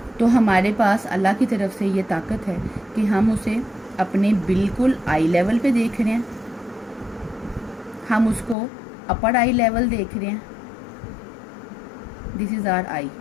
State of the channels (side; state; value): right; drops out; at 8.6 s